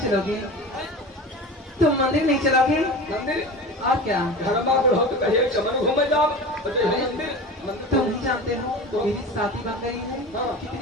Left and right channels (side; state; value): both; normal; correlation 0.32